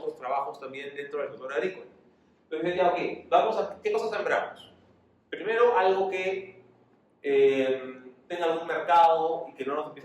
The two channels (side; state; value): both; identical; correlation 1.00